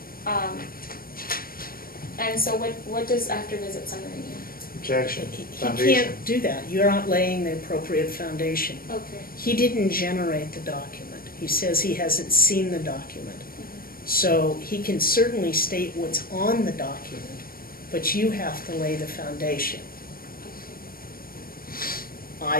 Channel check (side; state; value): right; late; 0.43 ms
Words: And so what does after visit summary mean? Objection, He foundation. can't do that. You're not laying the appropriate foundation. Okay. He didn't generate the document. He says he hasn't seen the document. So he can certainly state what's on the document, but you have to lay the foundation.